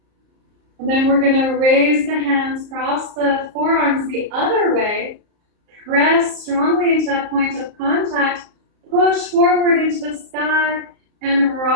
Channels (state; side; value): late; left; 34 ms